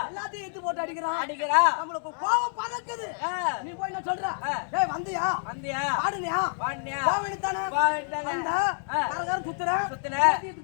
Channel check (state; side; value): silent; right; digital silence